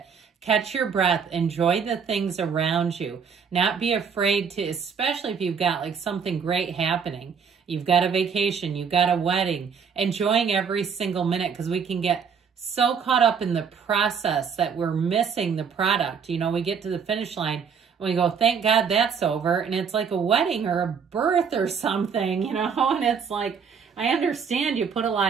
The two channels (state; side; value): quieter; left; 6.4 dB